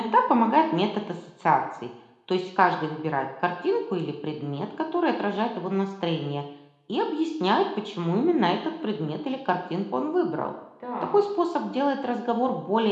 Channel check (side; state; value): both; identical; correlation 1.00